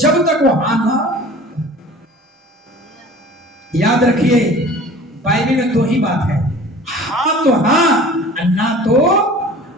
तक वो हाँ ना। याद रखिए, बाइबल में 2 ही बात है, हाँ तो हाँ, ना तो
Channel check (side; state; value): both; normal; correlation 0.44